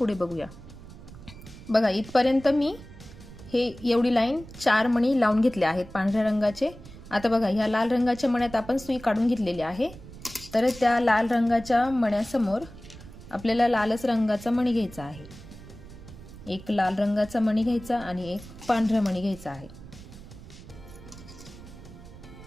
बघूया। बघा इथपर्यंत मी हे एवढी लाईन 4 मणी लावून घेतले आहेत पांढऱ्या रंगाचे। आता बघा ह्या लाल रंगाच्या मण्यात आपण सुई काढून घेतलेली आहे, तर त्या लाल रंगाच्या मण्यासमोर आपल्याला लालच रंगाचा मणी घ्यायचा आहे। एक लाल रंगाचा मणी घ्यायचा आणि एक पांढरा मणी घ्यायचा आहे।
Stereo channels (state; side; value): noise; right; rumble, 17 dB below the sound